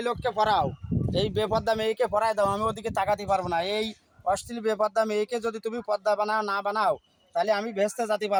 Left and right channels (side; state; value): both; identical; correlation 1.00